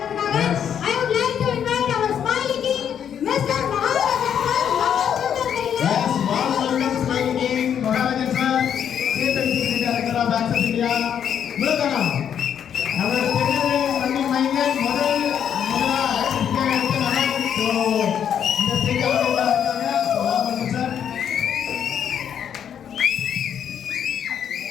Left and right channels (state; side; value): quieter; right; 8.7 dB